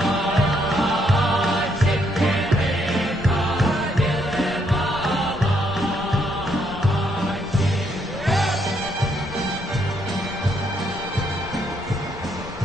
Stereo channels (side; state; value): left; noise; rumble, 17 dB below the sound